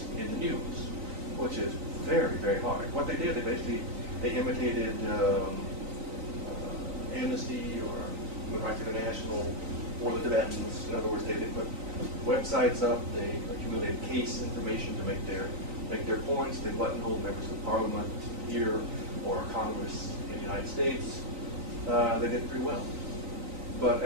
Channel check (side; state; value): left; late; 3.9 ms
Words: in the news, which is very, very hard. What they did, they imitated Amnesty or Human Rights International or the Tibetans. In other words, they put websites up, they accumulated case information to make their points. They buttonholed members of Parliament here or Congress in the United States. They did pretty well. But